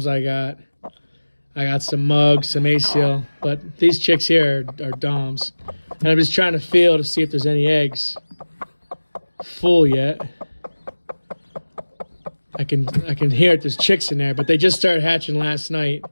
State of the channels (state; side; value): inverted; both; correlation -1.00